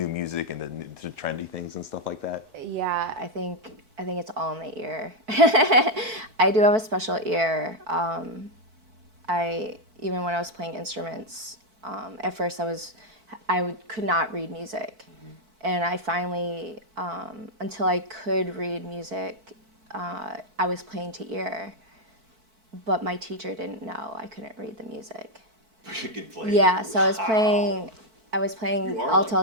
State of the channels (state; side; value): late; left; 4.5 ms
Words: music and the trendy things and stuff like that? Yeah, I think it's all in the ear. I do have a special ear. Even when I was playing instruments, at first could not read music, and I finally, until I could read music, I was playing to ear, but my teacher didn't know I couldn't read the music. You could play. Yeah, so I was playing